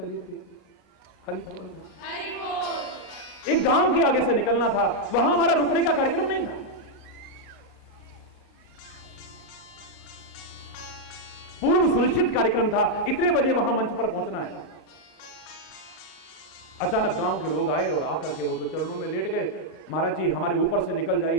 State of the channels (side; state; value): both; normal; correlation -0.02